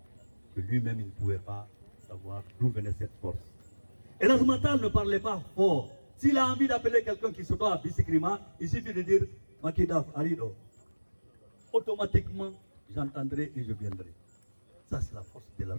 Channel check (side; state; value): both; inverted; correlation -1.00